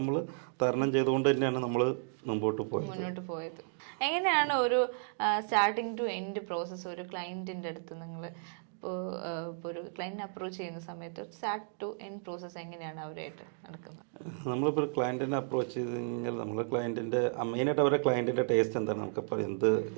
തരണം ചെയ്തുകൊണ്ട് തന്നെയാണ് നമ്മൾ മുന്നോട്ട് പോയത്. എങ്ങനെയാണ് ഒരു സ്റ്റാർട്ടിങ് ടു എൻഡ് പ്രോസസ്സ് ഒരു ക്ലയൻറ്റിൻ്റെ അടുത്ത് നിങ്ങൾ ഇപ്പോൾ ഒരു ക്ലയൻറ്റിനെ അപ്രോച്ച് ചെയ്യുന്ന സമയത്ത് സ്റ്റാർട്ട് ടു എൻഡ് പ്രോസസ്സ് എങ്ങനെയാണ് അവരായിട്ട് നടക്കുന്നത്? നമ്മളിപ്പോൾ ഒരു ക്ലയൻറ്റിനെ അപ്രോച്ച് ചെയ്ത് കഴിഞ്ഞാൽ നമ്മൾ ക്ലയൻറ്റിൻ്റെ മെയിനായിട്ട് അവരുടെ ക്ലയൻറ്റിൻ്റെ ടേസ്റ്റ് എന്താണ്, നമുക്കിപ്പോൾ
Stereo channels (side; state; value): left; silent; digital silence